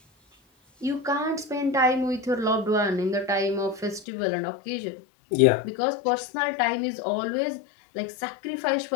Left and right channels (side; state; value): right; drops out; at 4.0 s